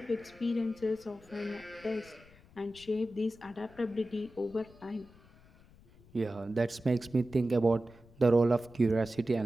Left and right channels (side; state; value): left; noise; rumble, 25 dB below the sound